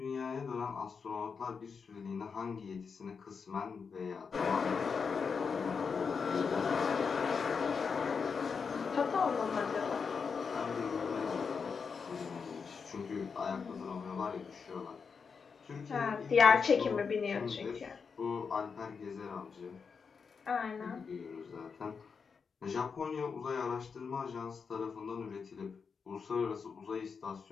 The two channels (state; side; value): quieter; right; 5.7 dB